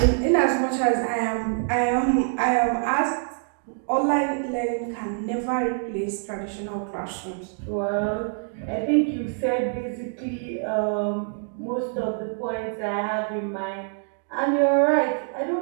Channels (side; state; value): left; silent; digital silence